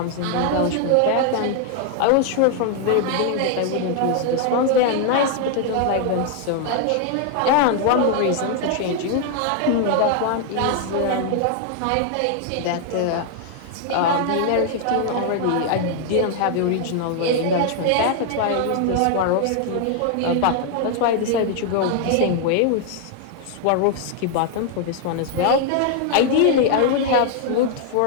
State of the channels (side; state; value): both; different; correlation 0.00